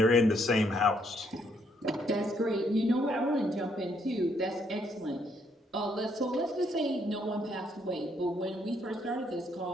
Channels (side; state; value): both; normal; correlation 0.71